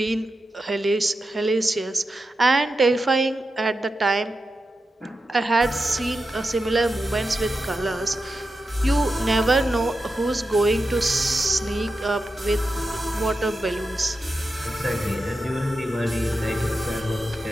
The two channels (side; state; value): both; normal; correlation 0.90